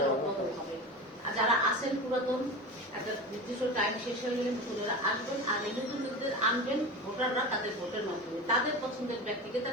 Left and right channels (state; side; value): normal; both; correlation 0.28